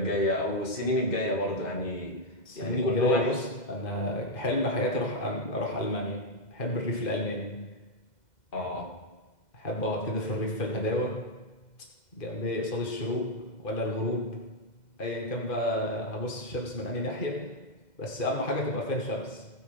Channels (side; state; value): right; late; 2.0 ms